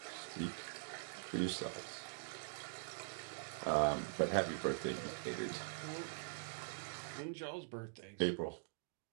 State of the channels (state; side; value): silent; left; digital silence